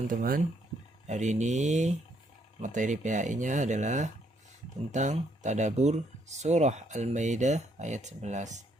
hari ini materi PAI-nya adalah tentang tadabbur surah Al-Maidah ayat 11.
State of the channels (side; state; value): both; normal; correlation 0.71